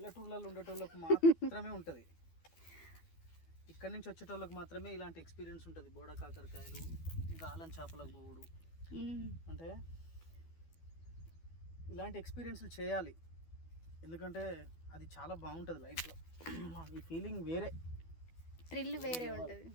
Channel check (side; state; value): right; late; 12 ms